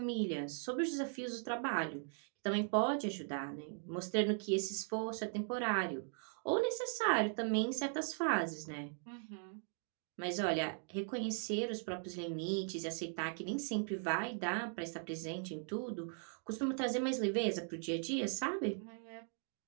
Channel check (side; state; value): left; silent; 52 dB below the other